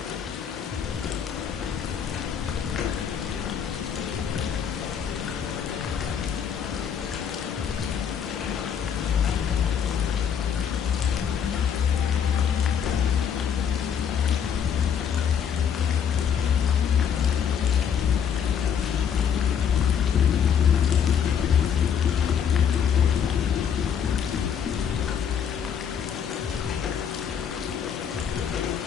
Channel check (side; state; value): right; quieter; 7.9 dB